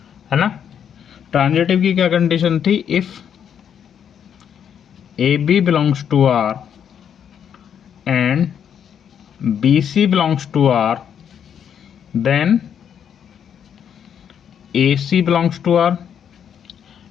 है ना. ट्रांजिटिव की क्या कंडीशन थी, if A B belongs to R and B C belongs to R then A C belongs to R.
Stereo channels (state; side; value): quieter; right; 8.4 dB